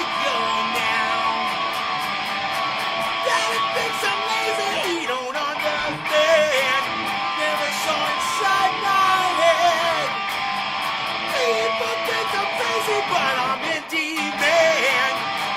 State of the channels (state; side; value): identical; both; correlation 1.00